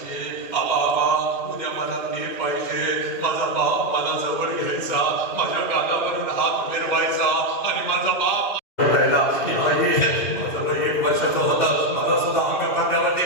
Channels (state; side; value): late; right; 2.7 ms